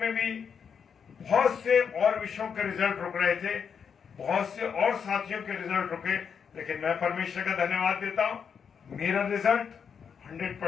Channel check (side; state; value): right; quieter; 6.8 dB